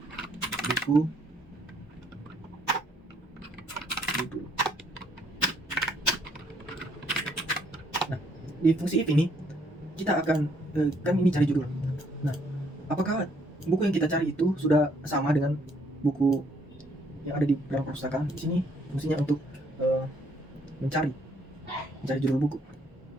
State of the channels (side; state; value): both; normal; correlation 0.67